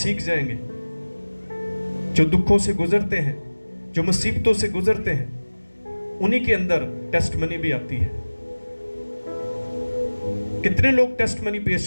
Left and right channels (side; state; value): both; inverted; correlation -1.00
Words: जाएंगे। जो दुखों से गुजरते हैं, जो मुसीबतों से गुजरते हैं, उन्हीं के अंदर टेस्टमनी भी आती है। कितने लोग टेस्टमनी पेश